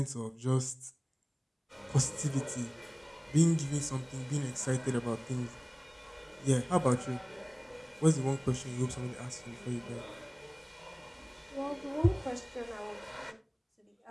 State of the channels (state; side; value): identical; both; correlation 1.00